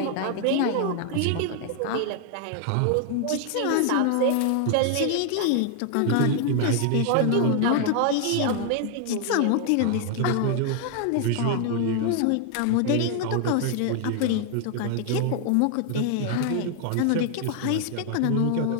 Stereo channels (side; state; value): both; different; correlation 0.00